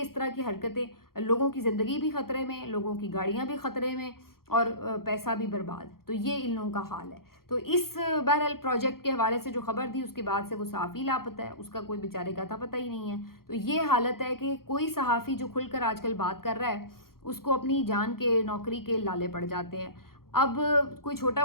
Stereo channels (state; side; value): late; right; 0.93 ms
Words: اس طرح کی حرکتیں، لوگوں کی زندگی بھی خطرے میں، لوگوں کی گاڑیاں بھی خطرے میں، اور پیسہ بھی برباد. تو یہ ان لوگوں کا حال ہے. تو اس بہرحال پروجیکٹ کے حوالے سے جو خبر تھی اس کے بعد سے وہ صحافی لاپتہ ہے، اس کا کوئی بیچارے کا تھا پتہ ہی نہیں ہے. تو یہ حالت ہے کہ کوئی صحافی جو کھل کر آج کل بات کر رہا ہے اس کو اپنی جان کے نوکری کے لالے پڑ جاتے ہیں. اب کوئی چھوٹا